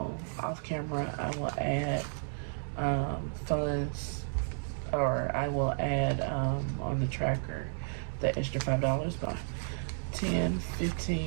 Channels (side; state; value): left; silent; digital silence